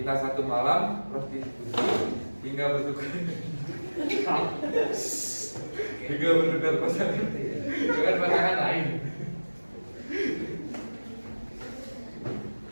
satu malam, prostitusi, hingga bertukar pasangan dengan pasangan lain.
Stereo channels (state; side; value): inverted; both; correlation -1.00